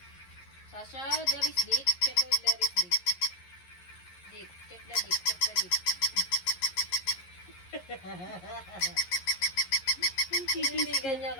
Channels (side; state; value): right; late; 11 ms